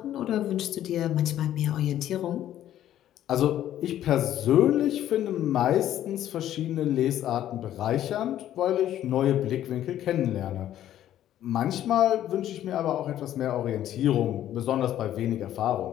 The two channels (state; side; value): quieter; right; 12.0 dB